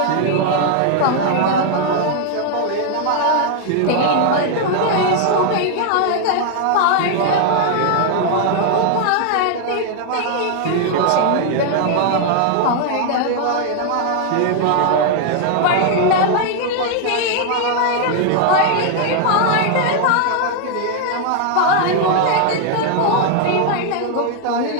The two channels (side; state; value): both; different; correlation 0.00